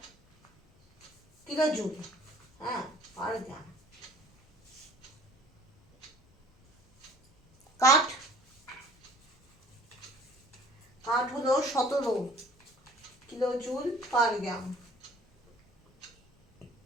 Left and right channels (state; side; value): normal; both; correlation 0.52